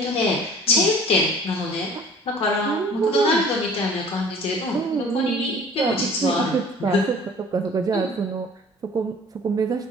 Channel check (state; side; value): normal; both; correlation 0.48